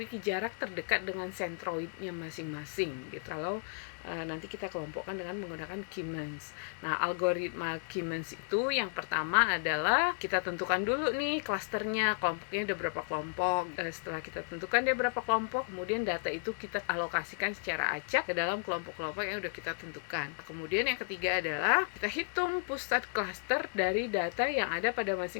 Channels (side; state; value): right; silent; digital silence